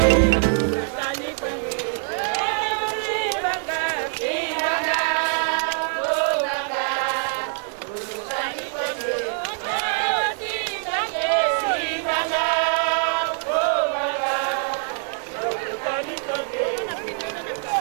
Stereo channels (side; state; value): left; silent; 56 dB below the other